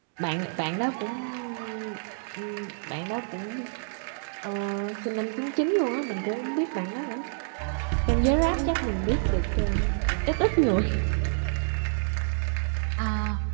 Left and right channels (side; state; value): left; silent; digital silence